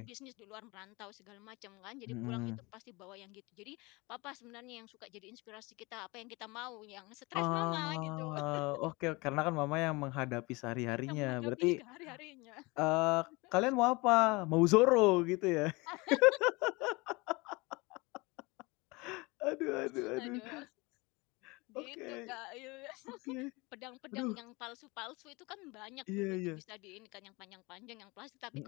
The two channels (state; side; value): quieter; right; 25.0 dB